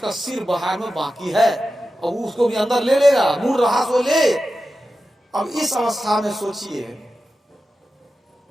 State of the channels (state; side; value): normal; both; correlation 0.92